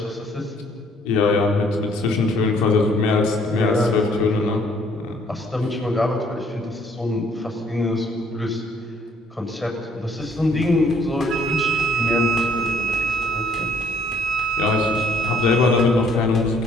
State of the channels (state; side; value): normal; both; correlation 0.62